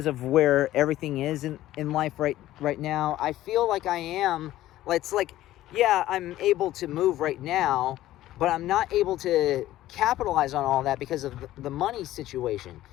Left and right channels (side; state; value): right; quieter; 14.6 dB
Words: of where everything is in life right now. I feel like I am, it's like, yeah, I'm able to move right now, but I'm not able to capitalize on all that because of the money situation.